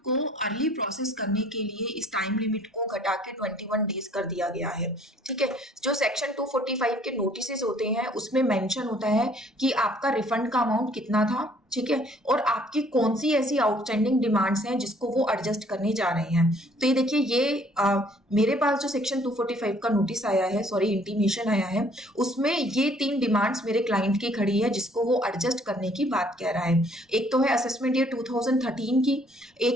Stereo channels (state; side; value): normal; both; correlation 0.60